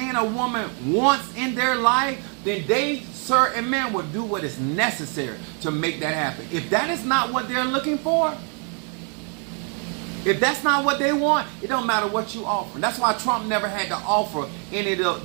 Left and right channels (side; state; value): left; quieter; 39.8 dB